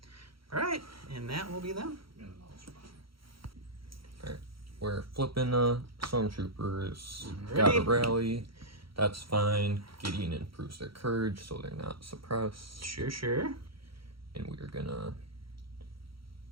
All right, and that will be them. Alright, we're flipping stormtroopers. Ready? Got a rally. That's fine. Gideon improves their courage so they're not suppressed. Sure, sure. And we're gonna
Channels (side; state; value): left; late; 0.75 ms